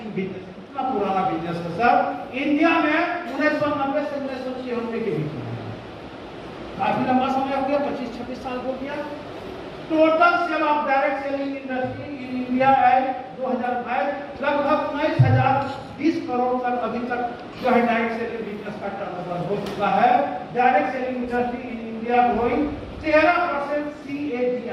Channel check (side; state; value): both; identical; correlation 1.00